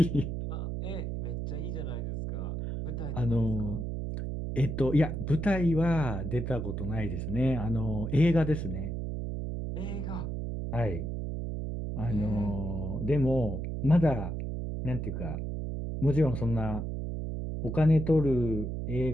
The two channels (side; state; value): right; noise; hum, 4 dB below the sound